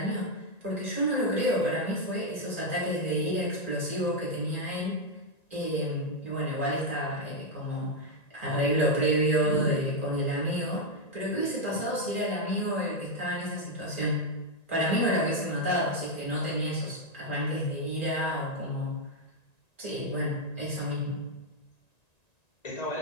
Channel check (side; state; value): right; late; 1.9 ms